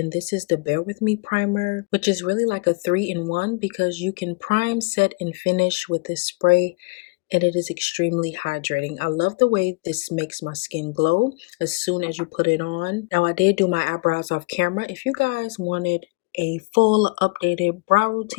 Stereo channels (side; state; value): right; quieter; 28.2 dB